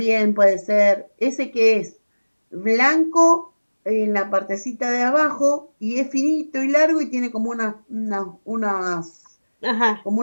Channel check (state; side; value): inverted; both; correlation -1.00